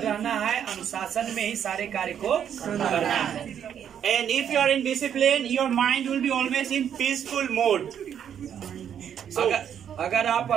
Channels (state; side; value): quieter; left; 8.9 dB